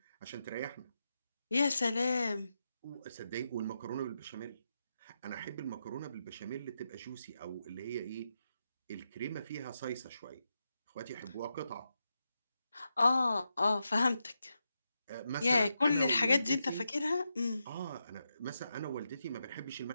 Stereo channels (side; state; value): both; inverted; correlation -0.86